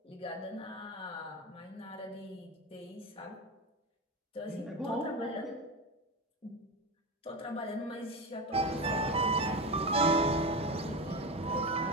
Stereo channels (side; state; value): both; normal; correlation 0.20